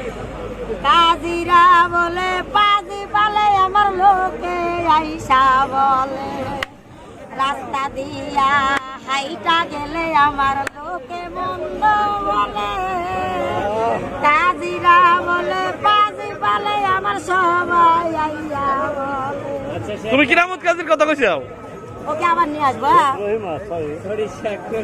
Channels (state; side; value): identical; both; correlation 1.00